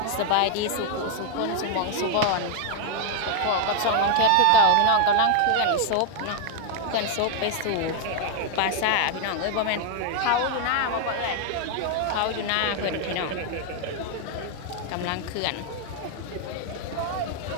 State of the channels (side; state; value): both; different; correlation 0.01